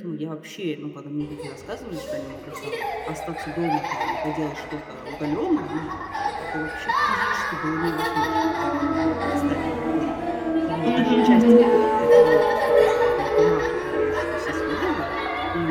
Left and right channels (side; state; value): both; identical; correlation 1.00